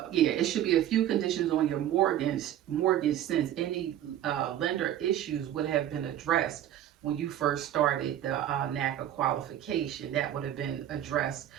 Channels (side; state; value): left; quieter; 11.6 dB